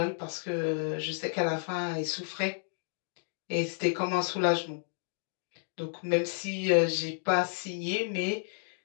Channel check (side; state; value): right; silent; digital silence